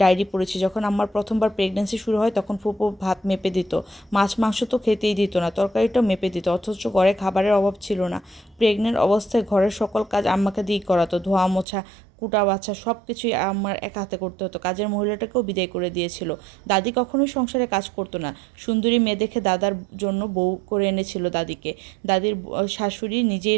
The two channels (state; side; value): drops out; left; at 11.7 s